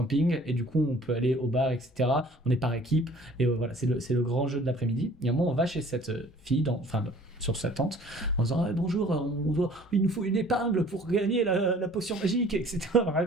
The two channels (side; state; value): both; normal; correlation 0.52